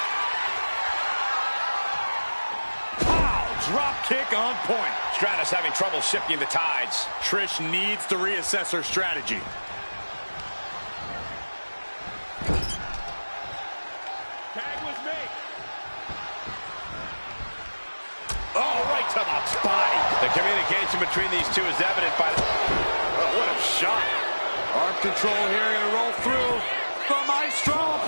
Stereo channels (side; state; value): both; inverted; correlation -1.00